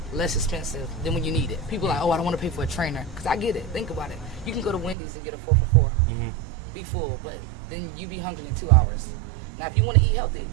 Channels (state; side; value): drops out; left; at 5.0 s